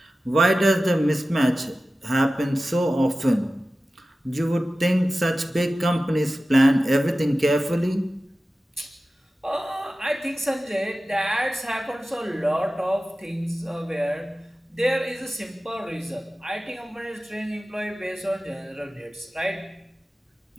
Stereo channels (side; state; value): both; normal; correlation 0.95